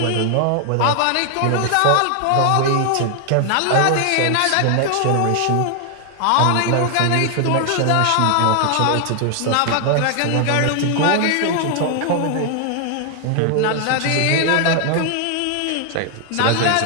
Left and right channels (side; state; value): both; different; correlation 0.00